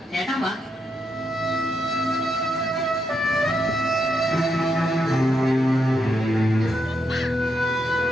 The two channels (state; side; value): normal; both; correlation 0.81